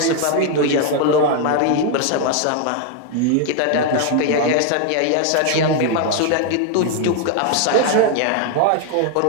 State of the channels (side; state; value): both; different; correlation 0.00